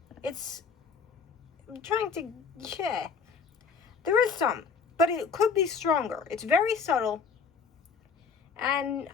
I'm trying to, yeah. There is some, but it could be stronger. It's very subtle. And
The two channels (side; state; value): right; quieter; 5.5 dB